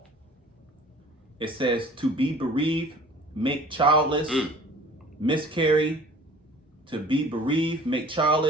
It says to be bereaved, make childless, miscarry, to be bereaved, make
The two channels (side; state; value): both; normal; correlation 0.48